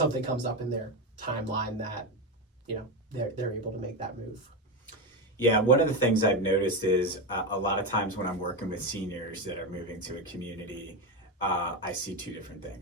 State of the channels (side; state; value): both; normal; correlation 0.14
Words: their timeline that they're able to make that move. Yeah, one of the things I've noticed is a lot of times when I'm working with seniors that are moving to a community, I see two different